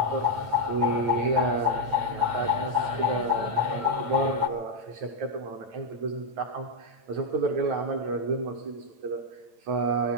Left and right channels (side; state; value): left; late; 9.0 ms